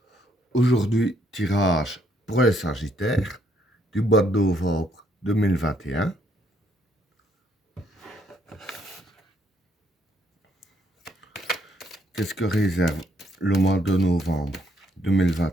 Aujourd'hui, tirage pour les Sagittaires du mois de novembre 2021. Qu'est-ce que réserve le mois de novembre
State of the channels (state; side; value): normal; both; correlation 0.71